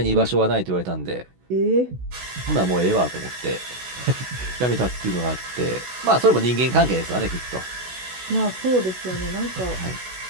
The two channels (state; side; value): late; left; 16 ms